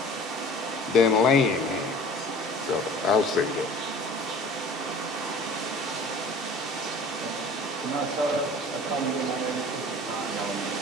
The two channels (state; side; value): normal; both; correlation 0.45